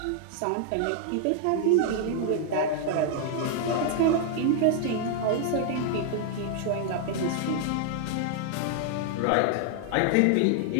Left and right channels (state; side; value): different; both; correlation -0.01